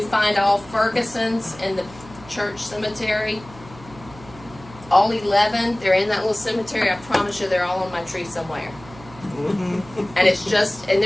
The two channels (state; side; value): noise; right; hum, 20 dB below the sound